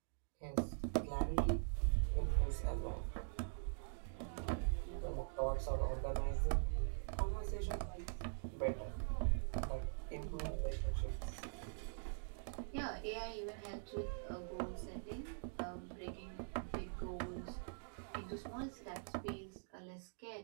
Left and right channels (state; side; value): silent; left; digital silence